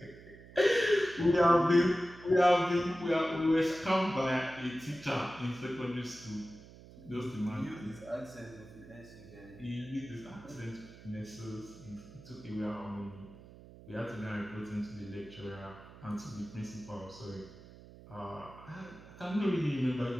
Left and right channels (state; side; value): noise; right; hum, 19 dB below the sound